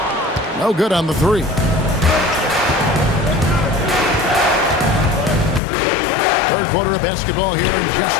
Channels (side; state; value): right; drops out; at 5.6 s